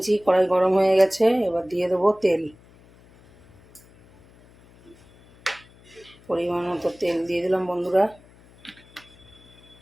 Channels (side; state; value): left; noise; hum, 27 dB below the sound